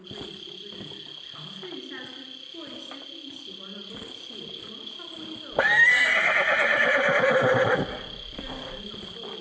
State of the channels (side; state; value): both; identical; correlation 1.00